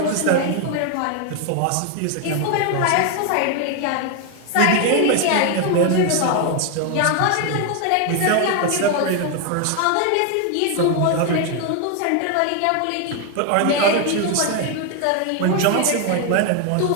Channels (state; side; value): different; both; correlation 0.01